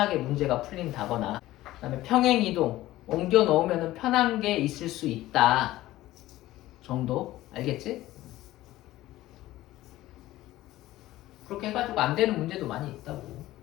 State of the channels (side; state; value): right; quieter; 16.0 dB